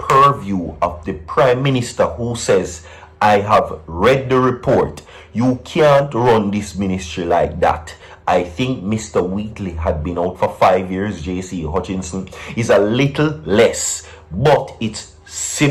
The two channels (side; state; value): both; identical; correlation 1.00